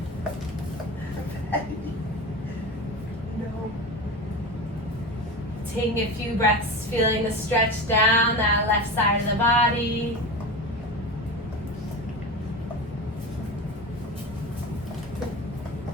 No. Taking a few breaths, feeling the stretch down that left side of the body.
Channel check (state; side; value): normal; both; correlation 0.27